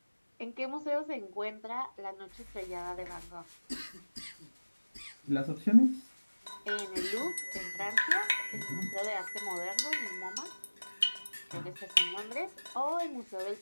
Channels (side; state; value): both; inverted; correlation -1.00